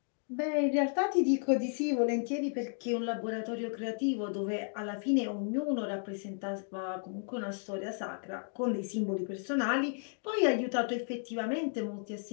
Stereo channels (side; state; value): right; silent; 56 dB below the other